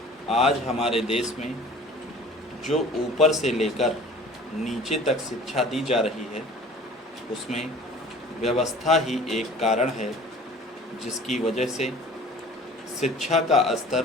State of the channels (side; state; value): both; normal; correlation 0.47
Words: आज हमारे देश में जो ऊपर से लेकर नीचे तक शिक्षा दी जा रही है, उसमें व्यवस्था ही एक कारण है जिसकी वजह से शिक्षा का